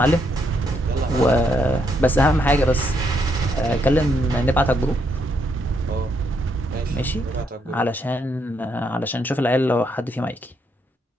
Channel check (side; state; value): both; normal; correlation 0.76